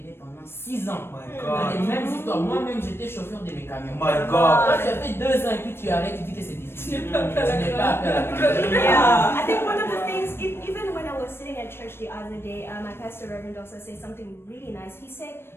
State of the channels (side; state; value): right; late; 0.12 ms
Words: pendant 6 ans. My Dans les God. mêmes histoires. Moi-même, j'étais chauffeur de mes camions. My Quand God. tu as fait 2 ans et puis tu arrêtes, tu dis que c'est difficile. Tu n'es pas appelé à la grandeur. Yeah, I think one of the things, even when I was sitting at church the other day, my pastor Reverend also said something really nice. He said,